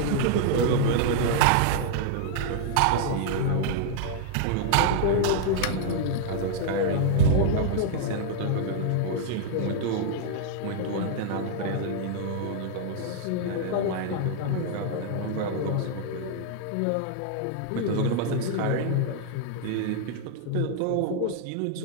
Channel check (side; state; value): both; different; correlation -0.01